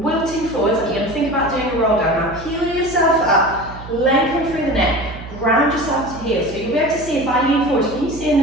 forwards, and you're going to think about doing a roll down. Now peel yourself up, lengthen through the neck, ground yourself to heel. So you'll be able to see if I lean forward. Can you see in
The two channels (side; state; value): right; noise; hum, 14 dB below the sound